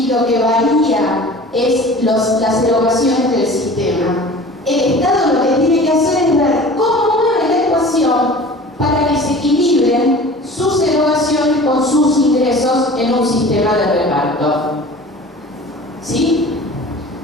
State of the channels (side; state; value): both; normal; correlation 0.42